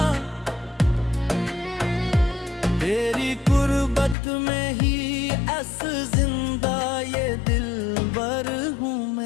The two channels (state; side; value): drops out; right; at 4.2 s